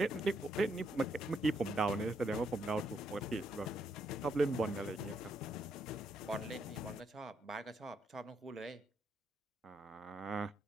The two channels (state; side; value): normal; both; correlation 0.76